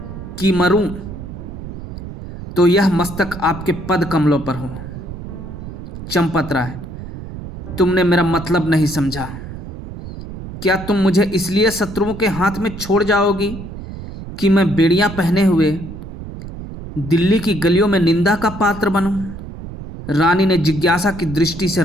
कि मरूं तो यह मस्तक आपके पद कमलों पर हो। चंपत राय, तुमने मेरा मतलब नहीं समझा। क्या तुम मुझे इसलिए शत्रुओं के हाथ में छोड़ जाओगी कि मैं बेड़ियां पहने हुए दिल्ली की गलियों में निंदा का पात्र बनूं? रानी ने जिज्ञासा की दृष्टि से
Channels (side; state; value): right; noise; rumble, 11 dB below the sound